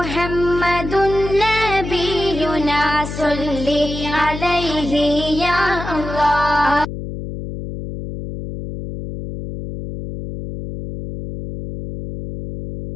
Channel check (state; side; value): noise; left; hum, 8 dB below the sound